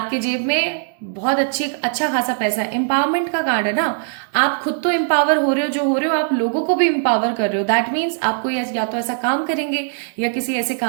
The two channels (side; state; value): left; silent; digital silence